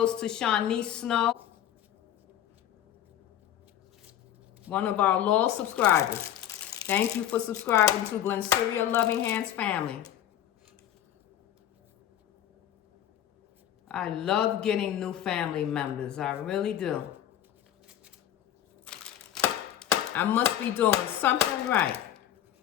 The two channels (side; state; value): right; quieter; 11.4 dB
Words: to Shaunice Snow, one of our loyal subscribers. Thank you for subscribing to Glennceria Loving Hands family. I love getting new family members. I really do. I must be doing something right.